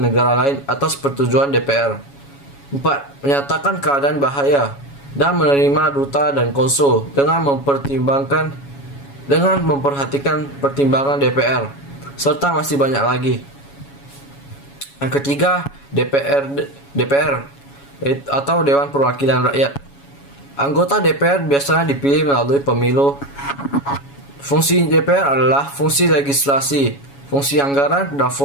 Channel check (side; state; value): right; late; 7.2 ms